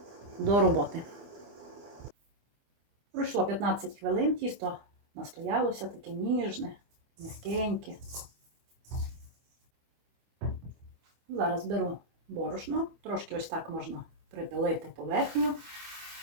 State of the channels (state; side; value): late; left; 24 ms